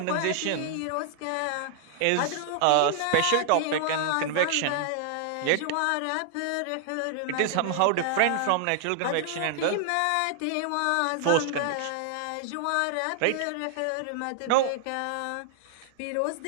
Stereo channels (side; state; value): both; different; correlation -0.01